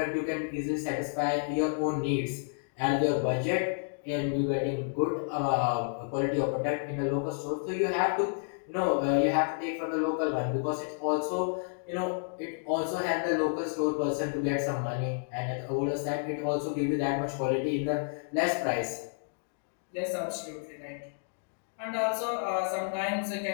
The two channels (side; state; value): right; silent; digital silence